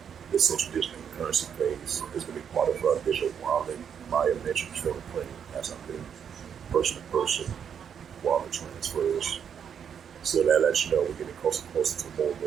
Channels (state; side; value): quieter; left; 7.9 dB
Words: traditional currency phase. Is going to be part of digital wallet, biometrics, fingerprinting, as I do, person-to-person wallet transfers. So that lets you know we're getting closer and closer to more and